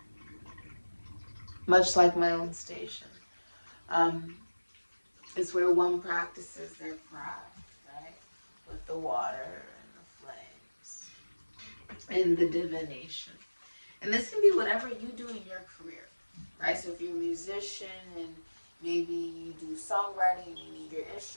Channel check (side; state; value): both; inverted; correlation -1.00